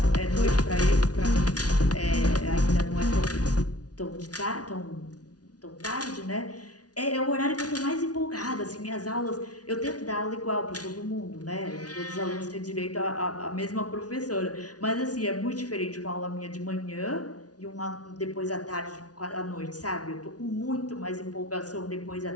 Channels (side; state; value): right; late; 0.68 ms